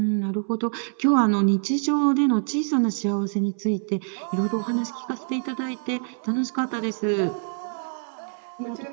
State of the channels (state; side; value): silent; left; 62 dB below the other